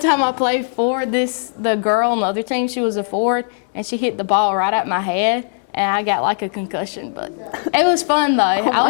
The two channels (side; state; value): right; silent; digital silence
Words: I played forward, the girl on the other team, she was a forward, and she hit the ball right at my head, and I got like a concussion. But it was fun, though. I